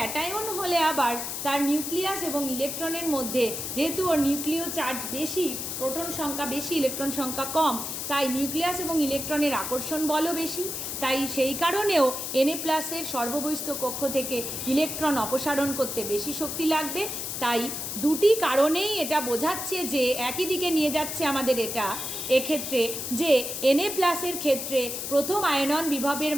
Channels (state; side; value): noise; left; hiss, 5 dB below the sound